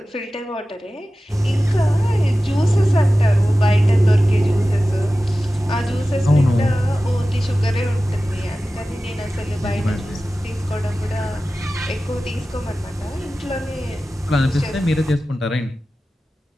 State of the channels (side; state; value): both; normal; correlation 0.95